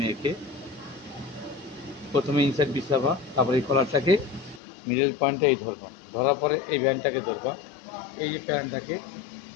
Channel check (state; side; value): drops out; right; at 4.6 s